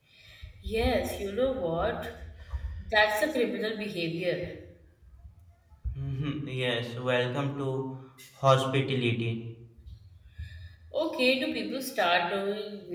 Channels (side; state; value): both; identical; correlation 1.00